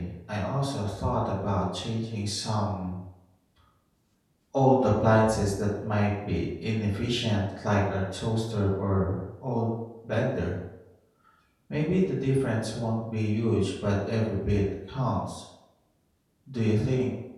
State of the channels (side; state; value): both; identical; correlation 1.00